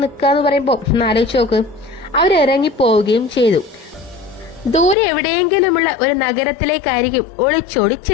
നിൽക്കുക എന്ന് പറയുമ്പോൾ ആലോചിച്ച് നോക്ക്. അവരിറങ്ങിപ്പോവുകയും ചെയ്തു. ദൂരെ എവിടെയെങ്കിലുമുള്ള ഒരു നഗരത്തിലേക്കായിരിക്കും ഒളിച്ചോടി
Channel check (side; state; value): right; drops out; at 5.0 s